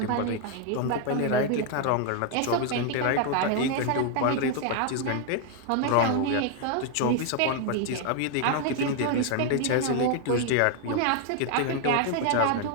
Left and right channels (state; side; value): different; both; correlation 0.00